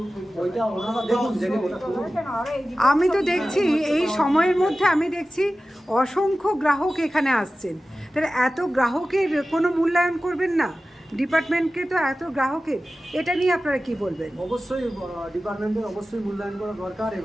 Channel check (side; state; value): both; normal; correlation 0.95